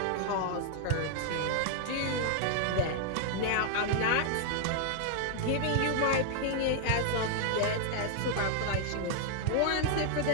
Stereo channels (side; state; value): both; different; correlation 0.00